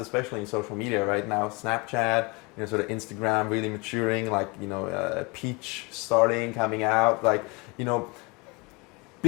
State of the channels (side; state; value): right; quieter; 28.4 dB